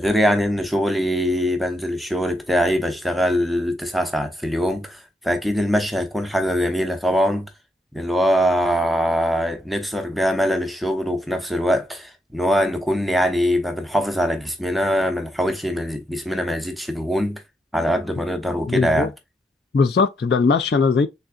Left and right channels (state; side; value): normal; both; correlation 0.79